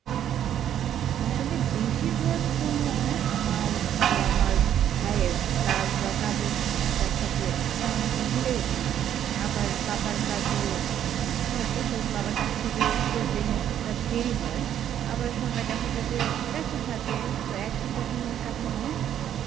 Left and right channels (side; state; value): left; quieter; 10.3 dB